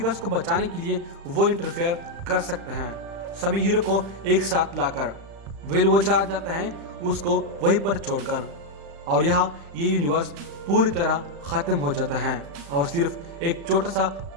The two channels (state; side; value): late; left; 35 ms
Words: को बचाने के लिए वो इंटरफेयर कर सकते हैं। सभी हीरो को एक साथ लाकर वो चला जाता है उसको वहीं पर छोड़कर, और यहाँ ये यूनिवर्स पूरी तरह खत्म हो जाता है और सिर्फ एक छोटा सा